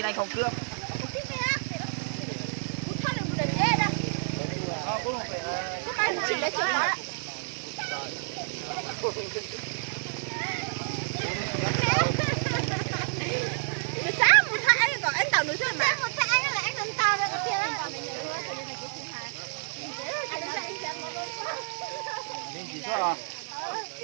anh không cướp.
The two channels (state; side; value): silent; left; digital silence